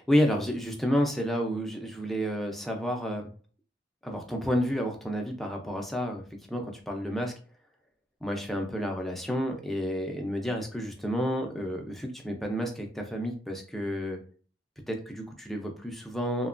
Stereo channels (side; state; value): both; normal; correlation 0.79